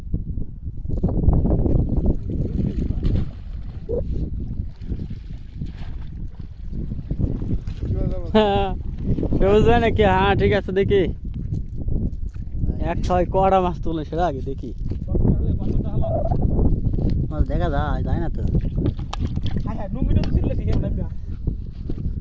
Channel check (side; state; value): both; identical; correlation 1.00